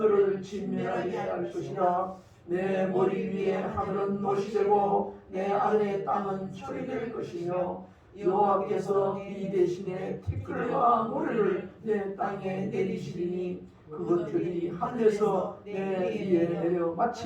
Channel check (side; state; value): both; identical; correlation 1.00